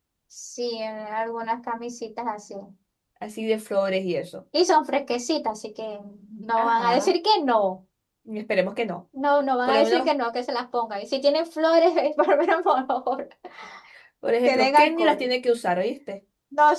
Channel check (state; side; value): identical; both; correlation 1.00